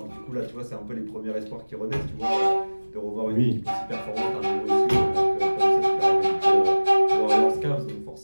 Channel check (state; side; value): inverted; both; correlation -1.00